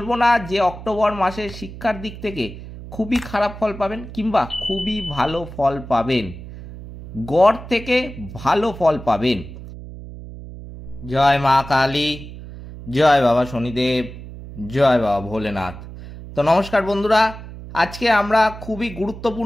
না যে অক্টোবর মাসে শিক্ষার দিক থেকে খুবই খারাপ ফল পাবেন কিংবা খুবই ভালো ফল পাবেন। গড় থেকে ভালো ফল পাবেন। জয় মা কালী, জয় বাবা শনিদেব, জয় বাবা ভোলেনাথ। তো নমস্কার বন্ধুরা, আজকে আমরা খুবই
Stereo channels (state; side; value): noise; right; hum, 13 dB below the sound